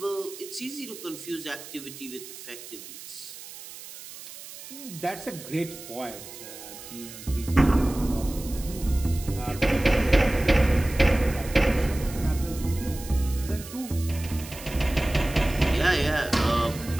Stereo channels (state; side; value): noise; right; hiss, 14 dB below the sound